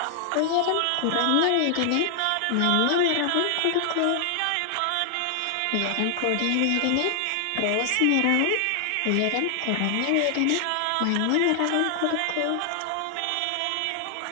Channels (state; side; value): different; both; correlation 0.00